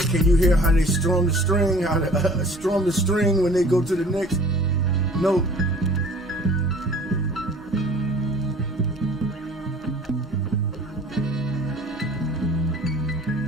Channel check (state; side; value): normal; both; correlation 0.49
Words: Can you hear how they strum the string? How they strum the string when they go to the next note?